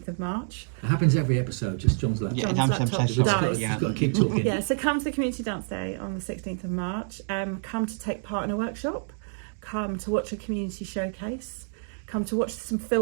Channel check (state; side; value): silent; left; 60 dB below the other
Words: of March. It happens every episode, just John's laptop. Yeah, John's John's laptop laptop. dies. You've got to keep talking. Yeah, so come to the Community Dance Day on the 16th of March. Come to take part in a workshop. Come to watch a community showcase. Come to watch some